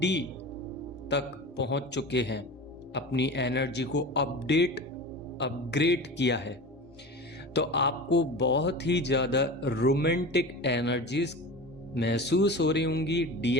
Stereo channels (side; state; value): both; normal; correlation 0.32